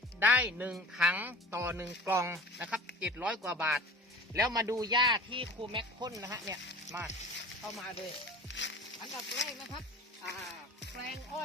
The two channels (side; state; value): both; normal; correlation 0.41